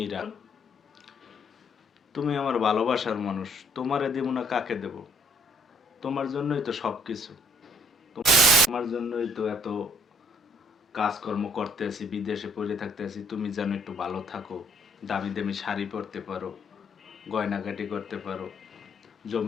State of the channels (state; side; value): normal; both; correlation 0.64